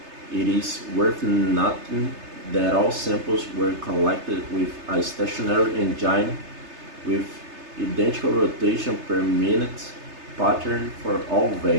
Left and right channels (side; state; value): left; late; 3.3 ms